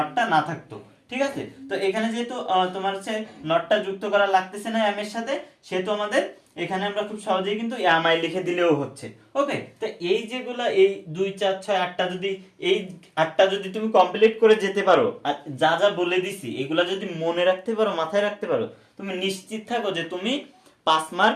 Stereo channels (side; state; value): both; identical; correlation 1.00